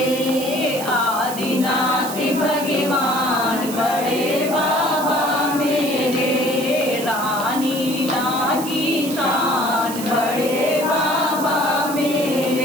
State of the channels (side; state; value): right; noise; hiss, 10 dB below the sound